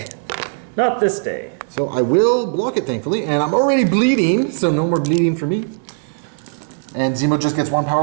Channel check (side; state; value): left; silent; digital silence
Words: Not this day. So I will block it, thankfully, and I'm already bleeding, so no more bleeding for me. And Zemo just gets 1